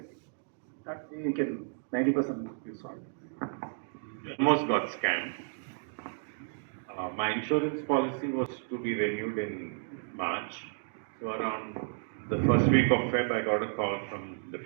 That you can 90% is solved. Almost got scammed. My insurance policy was to be renewed in March. So around the first week of Feb, I got a call from the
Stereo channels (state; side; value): silent; left; digital silence